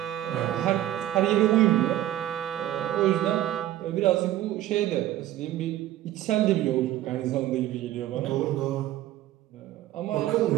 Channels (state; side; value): quieter; left; 13.8 dB